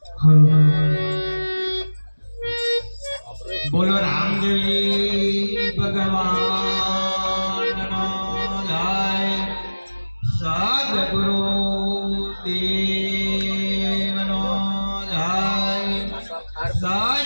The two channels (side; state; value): both; inverted; correlation -1.00